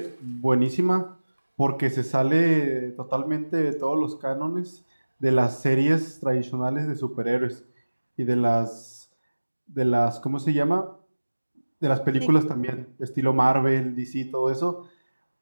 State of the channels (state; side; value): inverted; both; correlation -1.00